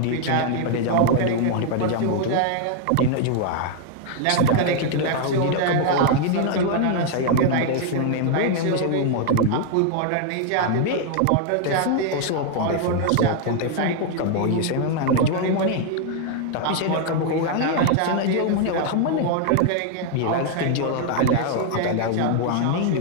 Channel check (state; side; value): different; both; correlation 0.00